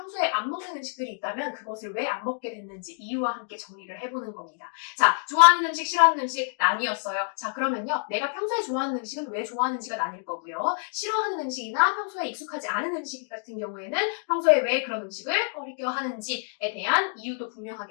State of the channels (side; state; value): right; silent; 56 dB below the other